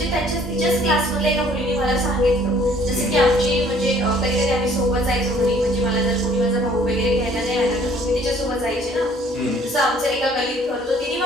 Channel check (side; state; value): both; normal; correlation 0.58